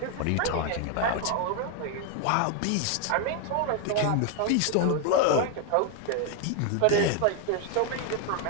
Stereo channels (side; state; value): both; different; correlation 0.01